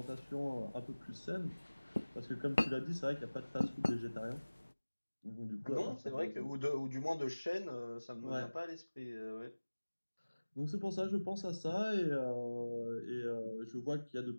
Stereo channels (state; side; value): inverted; both; correlation -1.00